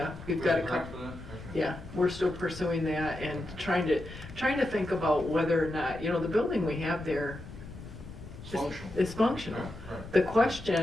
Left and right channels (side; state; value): left; noise; rumble, 14 dB below the sound